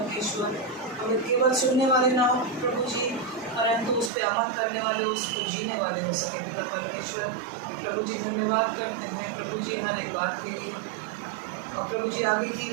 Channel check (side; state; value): left; drops out; at 4.1 s